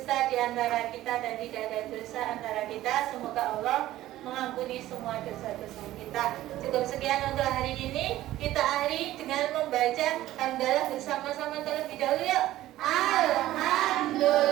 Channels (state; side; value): quieter; left; 14.9 dB